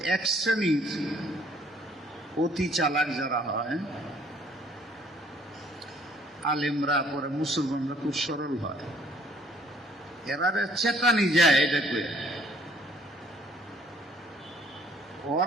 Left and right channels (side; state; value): both; normal; correlation 0.61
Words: এক শ্রেণীর অতি চালাক যারা হয়, আলেমরা, পরে মুসলমানরা খুব সরল হয়, এরা চেতানি যায় এটা করে।